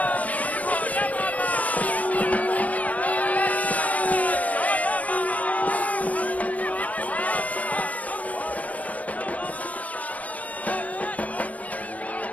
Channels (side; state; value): right; late; 0.070 ms